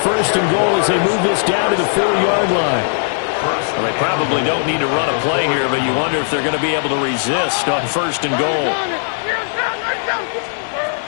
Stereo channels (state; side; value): silent; right; digital silence